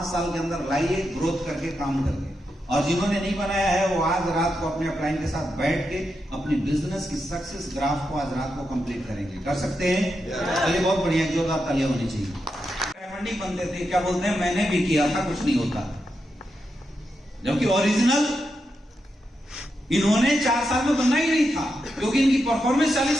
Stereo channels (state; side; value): normal; both; correlation 0.86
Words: साल के अंदर लाइए, ग्रोथ करके काम करके। और जिन्होंने नहीं बनाया है वो आज रात को अपने अपलाइन के साथ बैठ के अपनी बिजनेस की सक्सेस ग्राफ को आज रात को कंप्लीट करेंगे। कर सकते हैं? चलिए, बहुत बढ़िया, जोरदार तालियां होनी चाहिए। डायमंड नहीं बनते थे, क्या बोलते हैं, मैंने भी किया था, कुछ नहीं होता। जबकि ओरिजिनल इन्होंने 4 साल में बनना ही नहीं था, क्योंकि इनकी परफॉर्मेंस